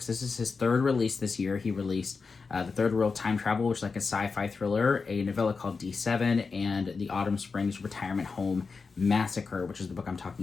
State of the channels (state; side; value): quieter; right; 4.7 dB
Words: is his third release this year. He released The Third World Time Travel, which is a sci-fi thriller, a novella called D7, and The Autumn Springs Retirement Home Massacre, which is the book I'm